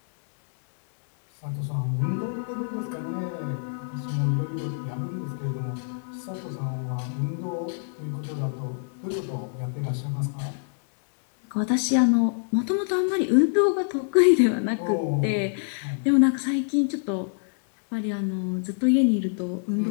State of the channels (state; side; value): silent; right; digital silence